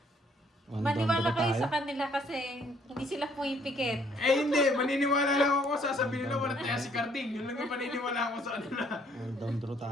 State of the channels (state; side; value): normal; both; correlation 0.64